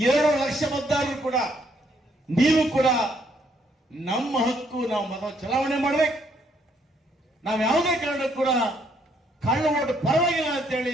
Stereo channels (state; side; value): normal; both; correlation 0.69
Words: ಲಕ್ಷ ಮತದಾರರು ಕೂಡ, ನೀವು ಕೂಡ ನಮ್ಮ ಹಕ್ಕು, ನಾವು ಮತ ಚಲಾವಣೆ ಮಾಡಬೇಕು. ನಾವು ಯಾವುದೇ ಕಾರಣಕ್ಕೂ ಕೂಡ ಕಳ್ಳ ಓಟ್ ಪರವಾಗಿಲ್ಲ